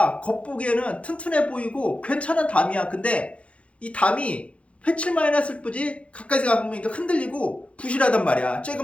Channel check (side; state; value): right; late; 0.062 ms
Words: 겉보기에는 튼튼해 보이고 괜찮은 담이야. 근데 이 담이 회칠만 해놨을 뿐이지 가까이서 가보니까 흔들리고 부실하단 말이야.